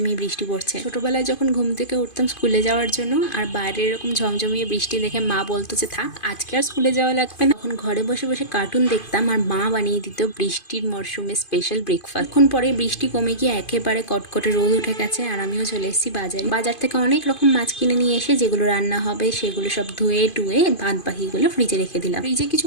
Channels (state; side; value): late; right; 2.5 ms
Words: বৃষ্টি পড়ছে। ছোটবেলায় যখন ঘুম থেকে উঠতাম স্কুলে যাওয়ার জন্য, আর বাইরে এরকম ঝমঝমিয়ে বৃষ্টি দেখে মা বলতো যে থাক আজকে আর স্কুলে যাওয়া লাগবে না। তখন ঘরে বসে বসে কার্টুন দেখতাম আর মা বানিয়ে দিত বৃষ্টির মরশুমে স্পেশাল ব্রেকফাস্ট। এখন পরে বৃষ্টি কমে গিয়ে একেবারে কটকটে রোদ উঠে গেছে আর আমিও চলে এসেছি বাজারে। বাজার থেকে অনেক রকম মাছ কিনে নিয়ে এসে যেগুলো রান্না হবে সেগুলো সব ধুয়ে টুয়ে বাদ বাকিগুলো ফ্রিজে রেখে দিলাম। ফ্রিজে কিছু